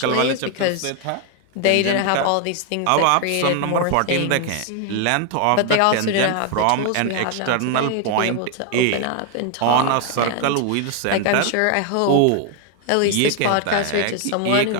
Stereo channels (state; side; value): different; both; correlation 0.00